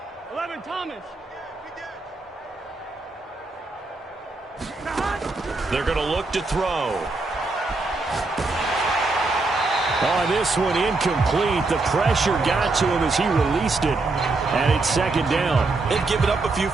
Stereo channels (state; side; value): quieter; left; 3.5 dB